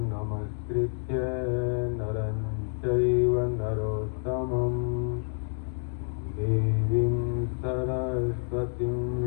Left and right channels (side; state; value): right; silent; digital silence